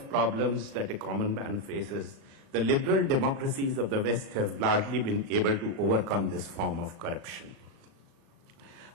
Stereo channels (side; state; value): left; late; 37 ms